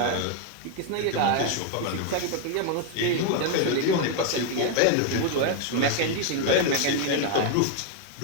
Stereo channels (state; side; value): different; both; correlation 0.01